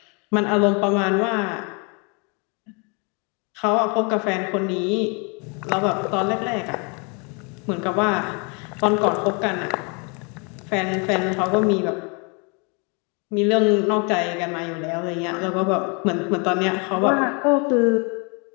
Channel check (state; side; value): quieter; right; 33.5 dB